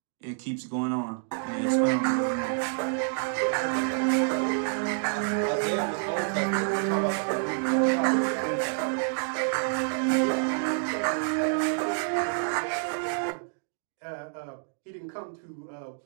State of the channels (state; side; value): silent; left; digital silence